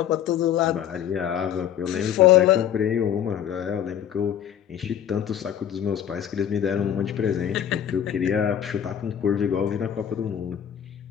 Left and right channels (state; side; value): quieter; right; 9.8 dB